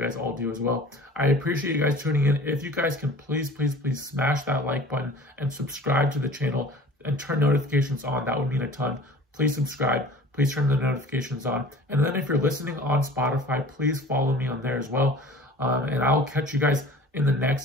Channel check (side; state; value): both; normal; correlation 0.44